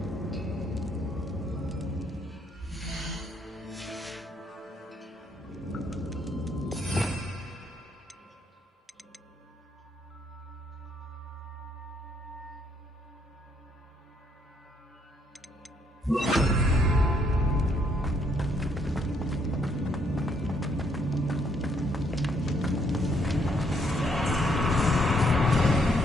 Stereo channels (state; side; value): normal; both; correlation 0.70